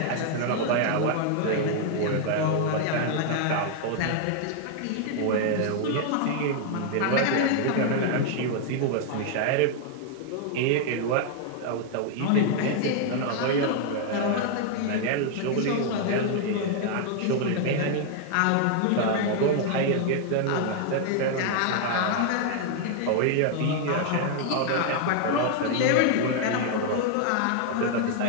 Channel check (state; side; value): different; both; correlation 0.00